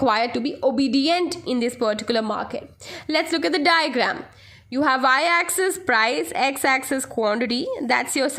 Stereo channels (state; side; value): identical; both; correlation 1.00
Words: to be obedient in this particular market. Let's look at the diagram. You have y-axis price, x-axis quantity. That's your